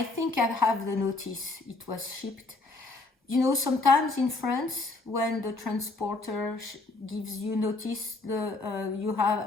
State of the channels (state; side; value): quieter; right; 3.3 dB